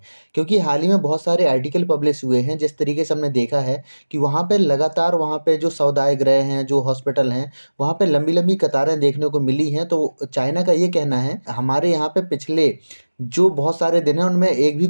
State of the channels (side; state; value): both; inverted; correlation -1.00